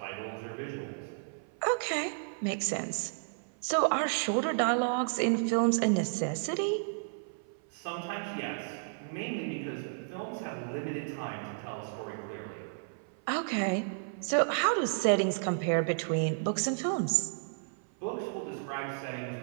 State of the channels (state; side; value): silent; left; 56 dB below the other